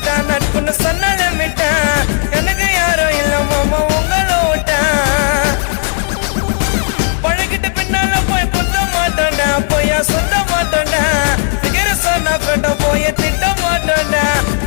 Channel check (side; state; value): right; silent; 64 dB below the other